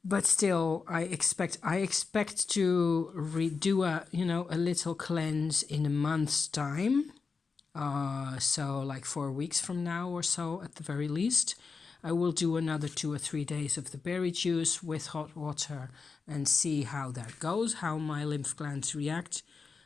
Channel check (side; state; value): right; quieter; 4.9 dB